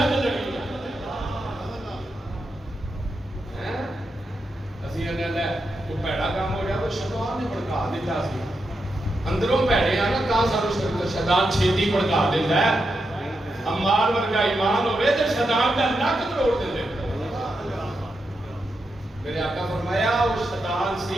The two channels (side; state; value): both; normal; correlation 0.86